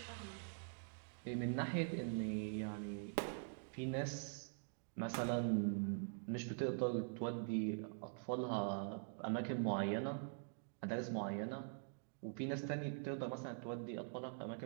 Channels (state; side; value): silent; left; digital silence